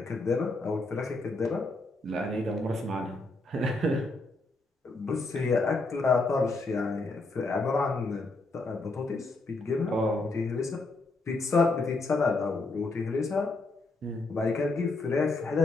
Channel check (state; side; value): quieter; right; 3.2 dB